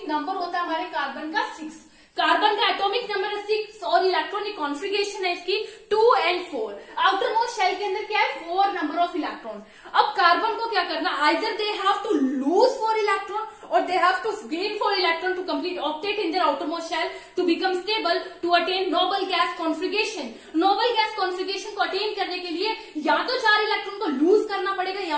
नंबर होता है हमारे कार्बन का 6। कार्बन का एटॉमिक नंबर है 6 और इलेक्ट्रॉनिक कॉन्फ़िगरेशन है इसकी 2 and 4। आउटर मोस्ट शेल के अंदर क्या है, 4 नंबर ऑफ इलेक्ट्रॉन। अब कार्बन को क्या करना, either they have to lose 4 electron or they have to gain 4 electron to complete octet in their outermost shell to become stable to attain noble gas configuration। noble gas configuration को attain करने के लिए या तो 4 electron को loose करना पड़ेगा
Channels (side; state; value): both; identical; correlation 1.00